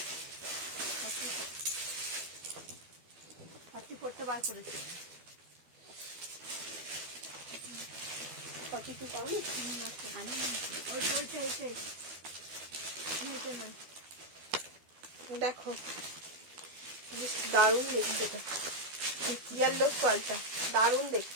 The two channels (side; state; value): left; late; 12 ms